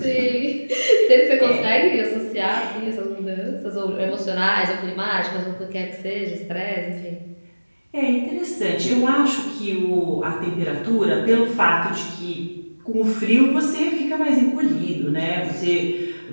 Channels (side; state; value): both; inverted; correlation -1.00